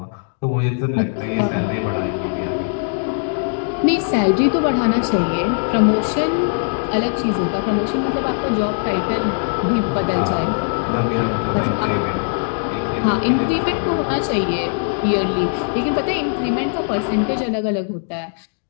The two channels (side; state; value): right; silent; digital silence